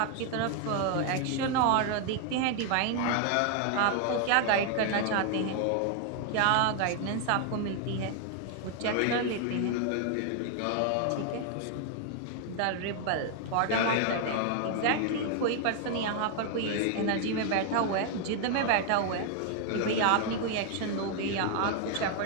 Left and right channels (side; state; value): both; different; correlation 0.00